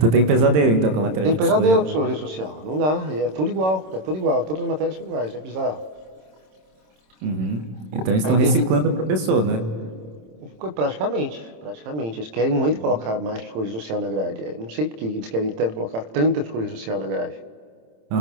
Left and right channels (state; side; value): late; left; 27 ms